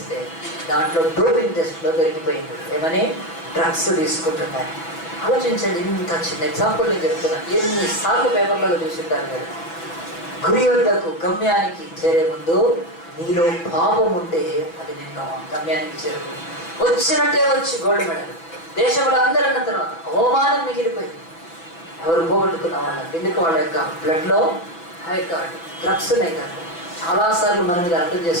దాంట్లో డోపింగ్ టెస్ట్లో దొరికిపోయింది. ఏమని? డ్రగ్స్ తీసుకుంటున్నారు. ఆలోచించండి, ఇంత చిన్న ఎగ్జాంపుల్ నేను చెప్తున్నాను. ఎన్నిసార్లు పేపర్లలో చూసింటారు మీరు. గురి వద్దకు గమ్యానికి చేరే ముందు నీలో పాపం ఉంటే అది నిన్ను గమ్యానికి చేరుకుంది. వచ్చినట్టే వచ్చి గోల్డ్ మెడల్ దేశంలో అందరూ అన్న తర్వాత అవమానం మిగిలిపోయింది. ఎవరు పోగొట్టుకున్న వాళ్ళకి. ఎందుకు? వాళ్ళ యొక్క బ్లడ్లో ఆ యొక్క డ్రగ్స్ ఉన్నాయి కదా. చాలాసార్లు మన మీద అర్థం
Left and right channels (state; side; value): late; right; 6.0 ms